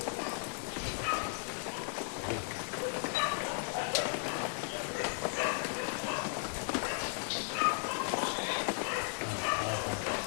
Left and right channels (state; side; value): silent; right; 54 dB below the other